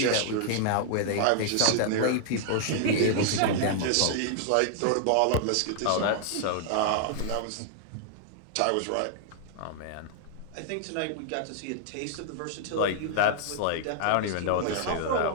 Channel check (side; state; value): both; different; correlation 0.00